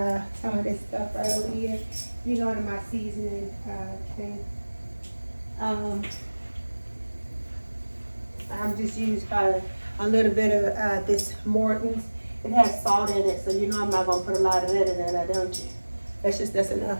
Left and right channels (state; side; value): inverted; both; correlation -1.00